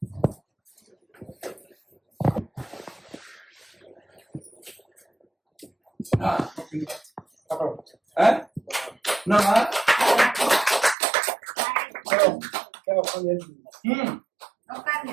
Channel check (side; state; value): left; drops out; at 11.0 s